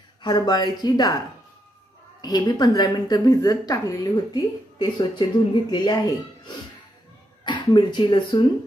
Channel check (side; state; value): both; normal; correlation 0.80